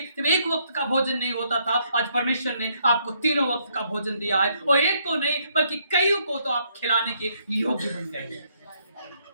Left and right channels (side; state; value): both; inverted; correlation -0.71